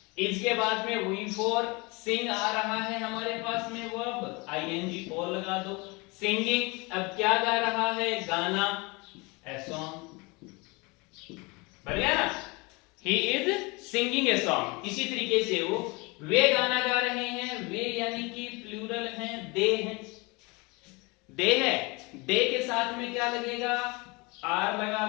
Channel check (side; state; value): right; quieter; 26.7 dB